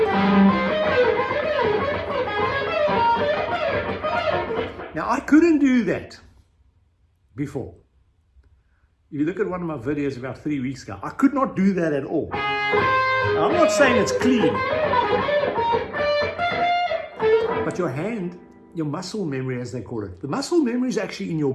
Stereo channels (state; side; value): identical; both; correlation 1.00